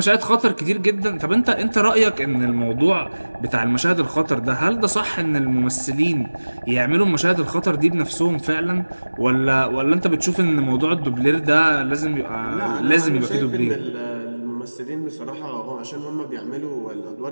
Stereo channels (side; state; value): both; inverted; correlation -1.00